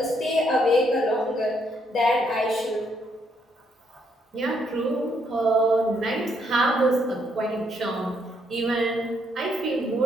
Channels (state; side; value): normal; both; correlation 0.73